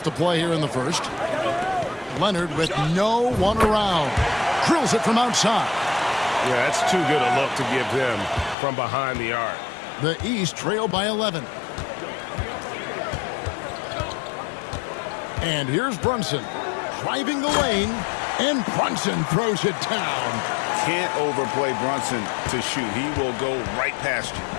to play here in the first. Leonard with no one around. Drills it from outside. Yeah, that's too good a look to give them from behind the arc. The East trail by 11. And here's Brunson driving the lane, and Brunson throws it down. Can't overplay Brunson to shoot. He will go right past you.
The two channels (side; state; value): right; drops out; at 8.6 s